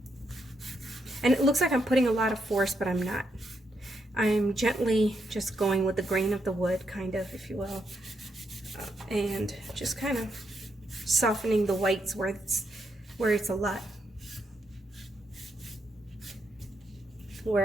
And it looks like I'm putting a lot of force, but I'm not. I'm gently just going with the grain of the wood, kind of, if you will. And just kind of softening the whites where it's a lot.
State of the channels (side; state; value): both; normal; correlation 0.79